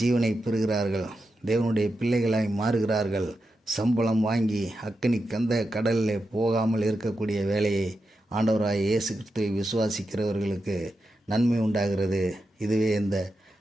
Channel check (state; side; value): normal; both; correlation 0.88